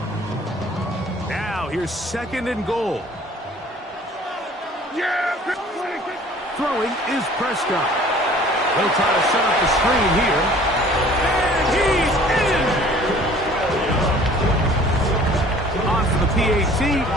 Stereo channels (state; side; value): normal; both; correlation 0.51